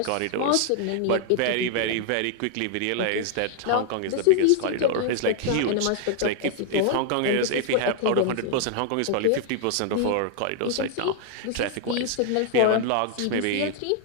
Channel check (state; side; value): different; both; correlation 0.00